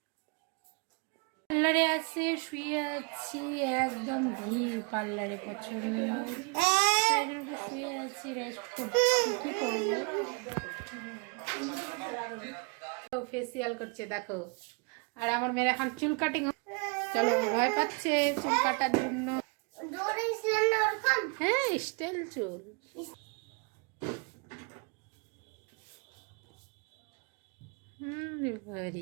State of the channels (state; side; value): quieter; left; 34.0 dB